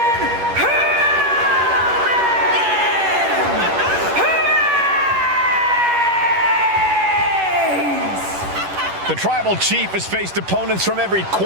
Reigns! The Tribal Chief has faced opponents from every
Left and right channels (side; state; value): left; late; 10 ms